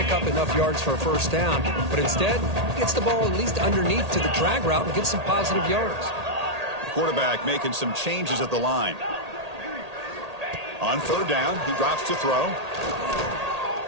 up enough yards for a first down. But instead, he gets the ball at least underneath to the drag route and gets some positive yards. The quarterback making some changes at the line. On third down, he drops to throw.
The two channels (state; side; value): late; left; 1.8 ms